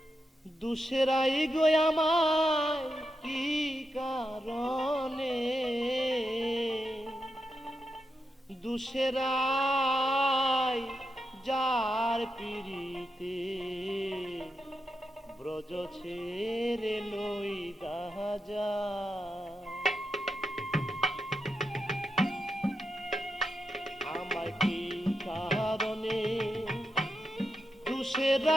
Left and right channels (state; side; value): normal; both; correlation 0.86